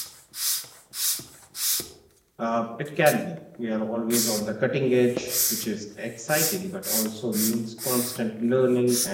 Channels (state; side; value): identical; both; correlation 1.00